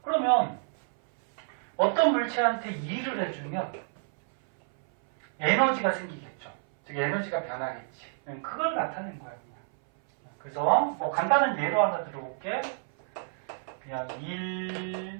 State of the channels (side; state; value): left; silent; 58 dB below the other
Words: 그러면 어떤 물체한테 2를 해주면 에너지가 생기겠죠. 즉 에너지가 변하겠지. 그걸 나타낸 거야 그냥. 그래서 뭐 간단한 예로 하나 들어볼게. 그냥 1